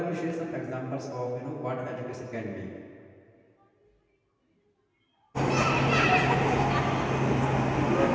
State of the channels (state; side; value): identical; both; correlation 1.00